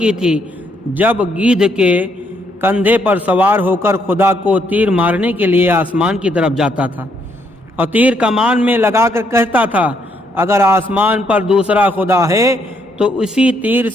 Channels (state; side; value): normal; both; correlation 0.73